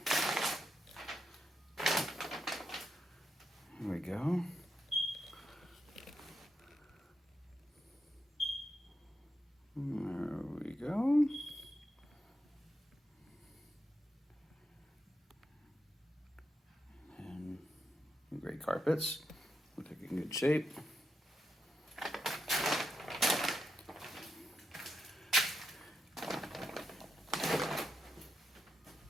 Here we go. There we go. And great carpets. Look like in good shape.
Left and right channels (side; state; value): both; normal; correlation 0.84